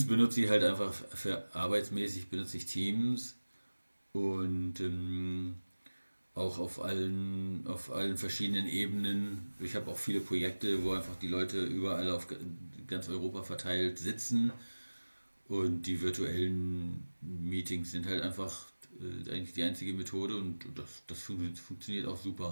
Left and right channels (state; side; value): inverted; both; correlation -1.00